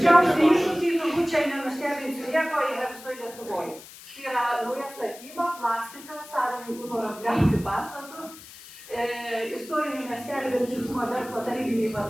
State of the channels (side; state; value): left; noise; hiss, 18 dB below the sound